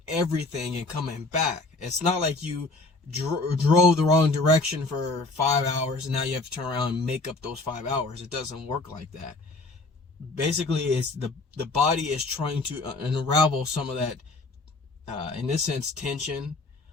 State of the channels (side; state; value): right; quieter; 3.3 dB